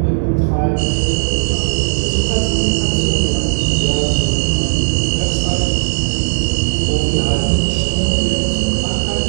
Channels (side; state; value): left; silent; digital silence